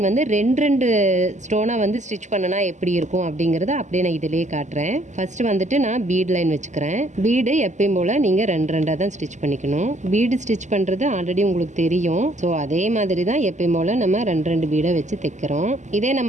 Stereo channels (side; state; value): left; late; 0.34 ms